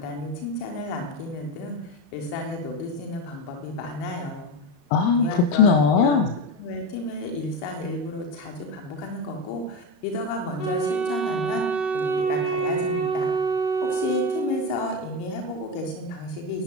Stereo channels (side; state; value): right; late; 35 ms